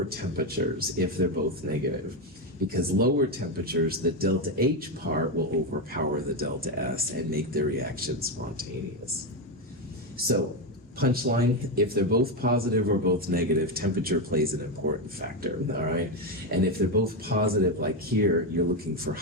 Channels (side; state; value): both; normal; correlation 0.10